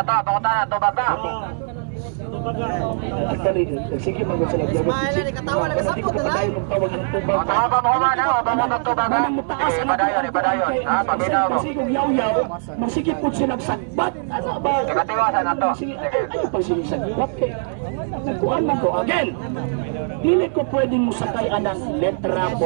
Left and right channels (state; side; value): silent; left; digital silence